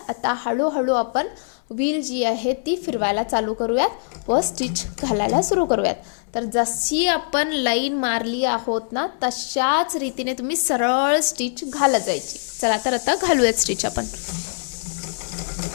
आता हळूहळू आपण व्हील जी आहे ती फिरवायला चालू करूयात व स्टिच घालायला सुरू करूयात. तर जशी आपण लाईन मारली आहोत ना तशाच रीतीने तुम्ही सरळ स्टिच घालत जायची. चला तर आता घालूयात स्टिच आपण.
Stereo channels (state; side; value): silent; right; 64 dB below the other